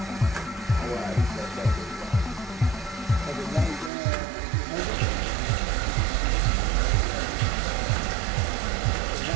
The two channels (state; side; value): drops out; left; at 3.9 s